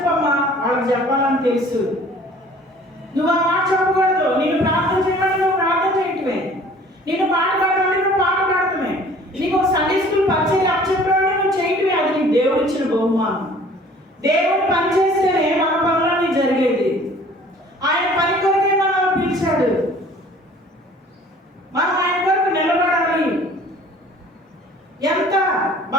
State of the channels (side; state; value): both; normal; correlation 0.51